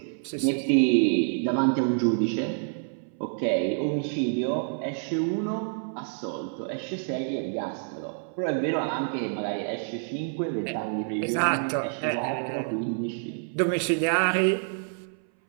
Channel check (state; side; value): silent; left; 60 dB below the other